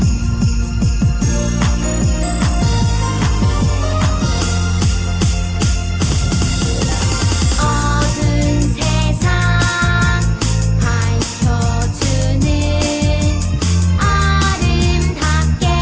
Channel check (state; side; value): identical; both; correlation 1.00